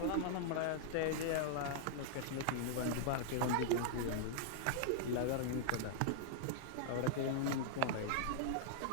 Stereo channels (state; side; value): different; both; correlation -0.01